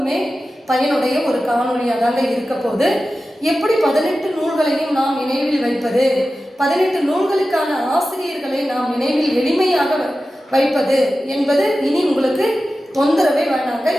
பயனுடைய ஒரு காணொலியாக தாங்க இருக்க போது. எப்படி 18 நூல்களையும் நாம் நினைவில் வைப்பது, 18 நூல்களுக்கான ஆசிரியர்களை நாம் நினைவில் எளிமையாக வைப்பது என்பது இனி உங்களுக்கு தொந்தரவே வேண்டாங்க.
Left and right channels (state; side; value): normal; both; correlation 0.94